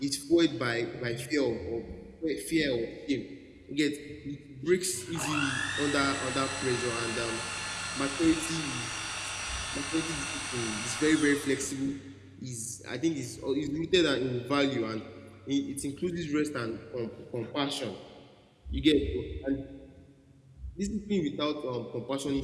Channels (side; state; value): both; identical; correlation 1.00